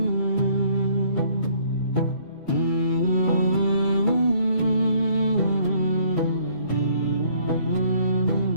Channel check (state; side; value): late; right; 2.3 ms